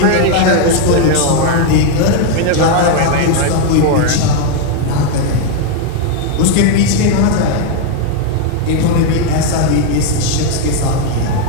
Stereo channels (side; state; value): both; different; correlation 0.01